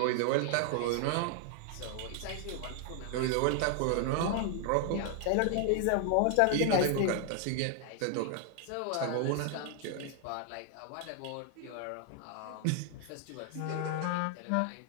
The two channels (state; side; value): different; both; correlation 0.00